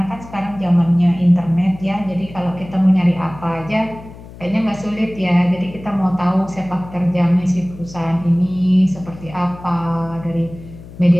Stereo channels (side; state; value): left; noise; hum, 17 dB below the sound